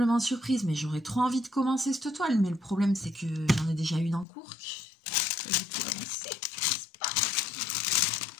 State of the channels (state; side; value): drops out; right; at 4.2 s